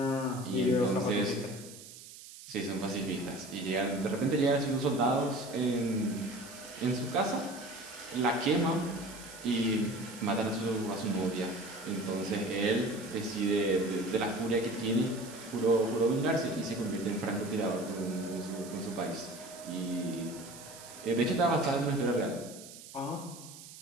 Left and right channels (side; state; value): right; noise; hiss, 16 dB below the sound